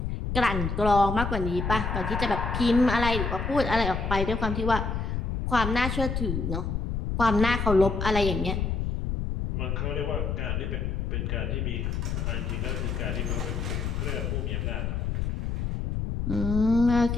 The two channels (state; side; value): noise; left; rumble, 1 dB below the sound